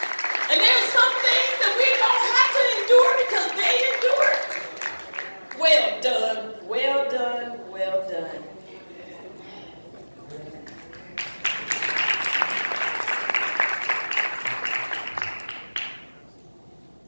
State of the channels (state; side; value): inverted; both; correlation -1.00